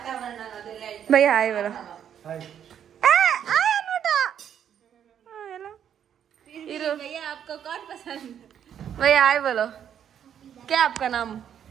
ಭಯ್ಯ ಆಯ್ ಬರೋ भैया आए बोलो क्या आपका नाम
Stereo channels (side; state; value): left; quieter; 9.1 dB